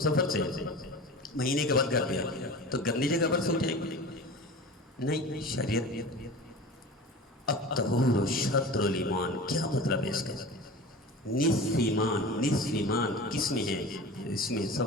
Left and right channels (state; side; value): normal; both; correlation 0.35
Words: سے مہینے کے بعد گھر پہ تو گندی جگہ پر سو جائے گی؟ نہیں. شریعت الطہور شطر الایمان، کیا مطلب ہے اس کا؟ نصف ایمان. نصف ایمان کس میں ہے؟ اس میں